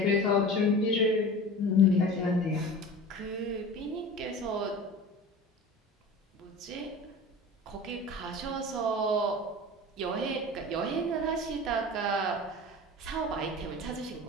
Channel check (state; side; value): normal; both; correlation 0.36